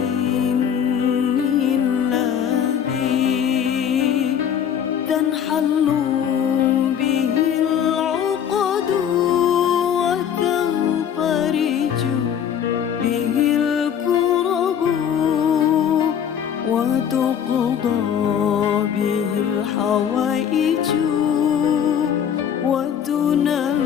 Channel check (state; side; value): quieter; right; 8.6 dB